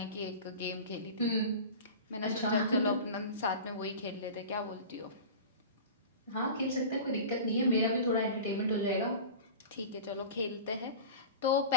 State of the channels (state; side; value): inverted; both; correlation -0.35